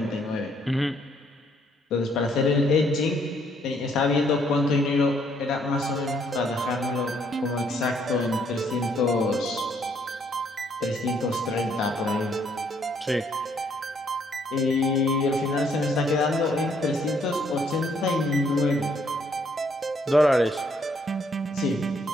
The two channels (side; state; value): both; normal; correlation 0.68